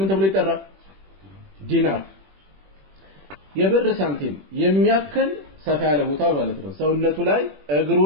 ተብሎ ይጠራል ዲናር የብር ሳንቲም የሚያክል ሰፋ ያለ ቦታ ማለት ነው ሰውነቱ ላይ እግሩ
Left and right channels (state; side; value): late; left; 21 ms